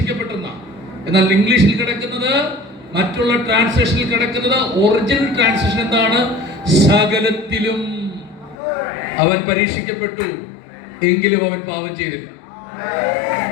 എന്നാൽ ഇംഗ്ലീഷിൽ കിടക്കുന്നത്, മറ്റുള്ള ട്രാൻസ്ലേഷനിൽ കിടക്കുന്നത്, ഒറിജിനൽ ട്രാൻസ്ലേഷൻ എന്താണ്? സകലത്തിലും അവൻ പരീക്ഷിക്കപ്പെട്ടു എങ്കിലും അവൻ പാപം ചെയ്തില്ല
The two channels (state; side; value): drops out; right; at 8.6 s